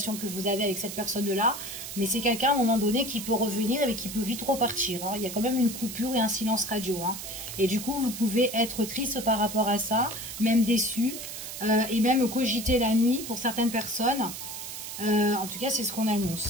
que vous avez avec cette personne-là, mais c'est quelqu'un à un moment donné qui peut revenir et qui peut vite repartir. Hein. Il y a quand même une coupure et un silence radio. Hein. Et du coup, vous pouvez être triste par rapport à ça, même déçu. et même cogiter la nuit pour certaines personnes. En tout cas, c'est ce qu'on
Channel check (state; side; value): noise; right; hiss, 8 dB below the sound